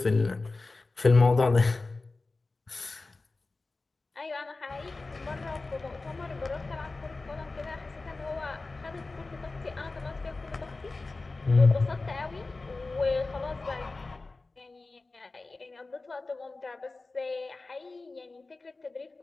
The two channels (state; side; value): quieter; right; 3.5 dB